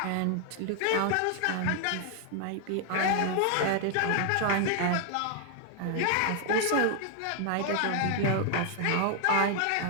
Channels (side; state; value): both; different; correlation 0.00